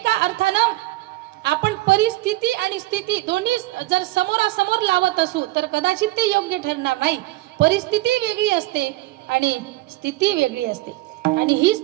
अर्थानं आपण परिस्थिती आणि स्थिती दोन्ही जर समोरासमोर लावत असू तर कदाचित ते योग्य ठरणार नाही. परिस्थिती वेगळी असते आणि स्थिती वेगळी असते. आणि ही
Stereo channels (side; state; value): left; quieter; 18.9 dB